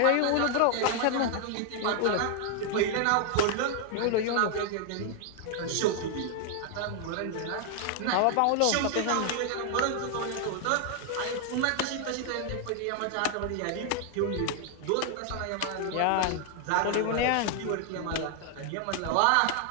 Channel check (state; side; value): different; both; correlation 0.00